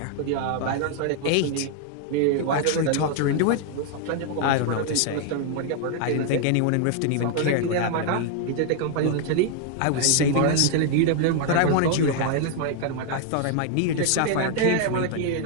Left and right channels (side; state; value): both; different; correlation 0.00